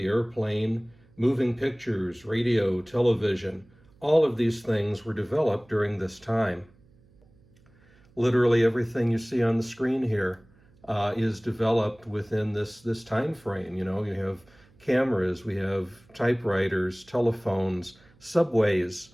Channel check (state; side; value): noise; right; hum, 30 dB below the sound